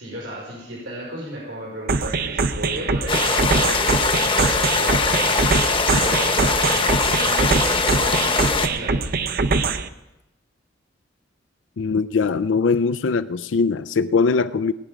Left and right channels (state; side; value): normal; both; correlation 0.19